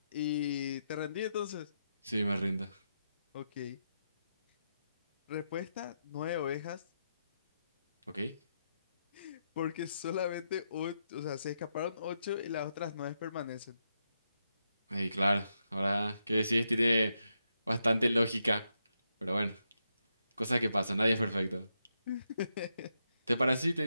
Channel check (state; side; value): inverted; both; correlation -0.83